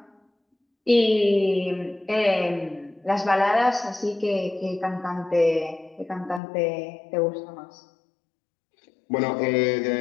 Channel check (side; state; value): right; drops out; at 6.4 s